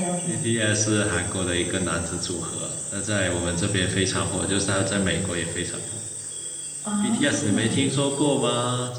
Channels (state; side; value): identical; both; correlation 1.00